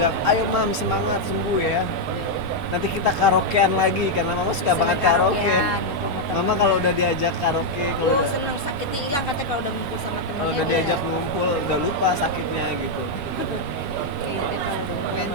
ayo mam semangat, sembuh ya. Nanti kita karaokean lagi karena mama suka banget karaoke. Mama kalau udah diajak karaoke, kalau udah, senang sakitnya hilang katanya kalau udah ngumpul sama temennya. kalau udah diajak ngumpul udah lupa sakitnya gitu.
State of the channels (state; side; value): normal; both; correlation -0.01